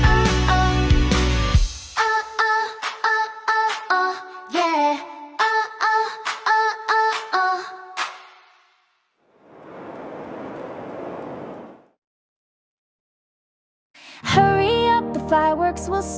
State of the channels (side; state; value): both; identical; correlation 1.00